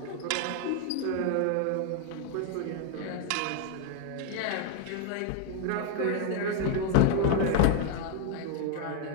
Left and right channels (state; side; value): different; both; correlation 0.01